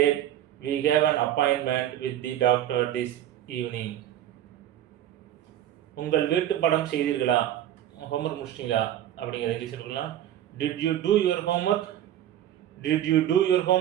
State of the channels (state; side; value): quieter; left; 11.8 dB